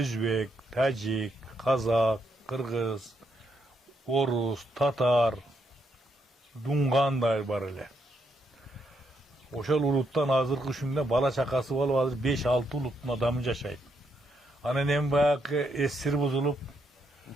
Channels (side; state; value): both; normal; correlation 0.77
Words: Тажик, Казак, Кыргыз, Орус, Татар, Дунгандай бар эле. Ошол улуттан азыркы күндө бала чакасы болуп азыр 5-6 улуттун адамы жашайт. Анан эми баягы эсир бузулуп